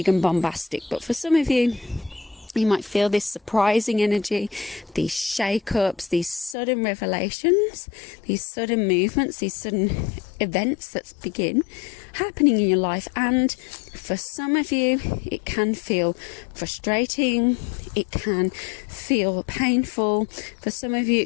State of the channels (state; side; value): drops out; right; at 6.6 s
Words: and bombastic, but for some of you You might feel this surprising energy, these shake-ups, these sudden revelations, these sudden movements, these sudden events that begin happening in your life. And for some of you, it can feel frustrating, it can feel painful. For some of you,